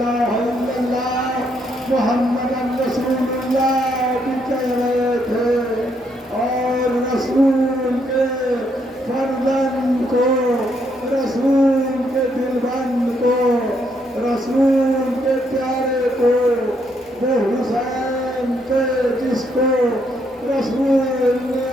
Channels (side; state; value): both; normal; correlation 0.74